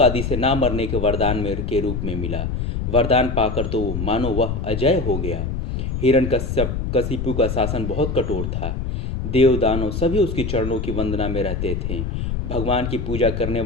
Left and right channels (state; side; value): noise; left; rumble, 3 dB below the sound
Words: से ना मरने के वरदान में के रूप में मिला। वरदान पाकर तो मानो वह अजय हो गया। हिरण्यकश्यप कशिपु का शासन बहुत कठोर था। देव दानव सभी उसके चरणों की वंदना में रहते थे। भगवान की पूजा करने